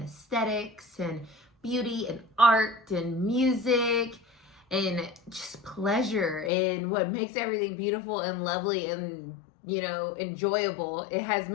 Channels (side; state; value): right; drops out; at 6.5 s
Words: aesthetics and beauty and art and music and just pleasure and what makes everything beautiful and lovely and, enjoyable. It has